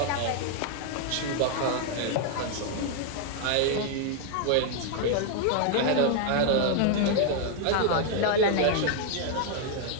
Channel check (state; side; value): different; both; correlation 0.00